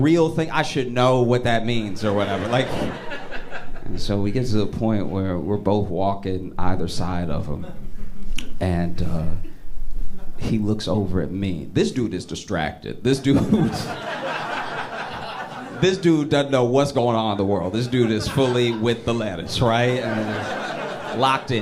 thing. I should know what that means or whatever. Like, and so we get to the point where we're both walking either side of him, and he looks over at me. This dude is distracted. This dude doesn't know what's going on in the world. This dude is fully with the lettuce, right? And locked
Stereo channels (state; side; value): identical; both; correlation 1.00